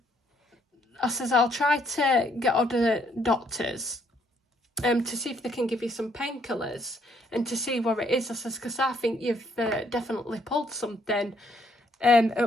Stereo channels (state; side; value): normal; both; correlation 0.69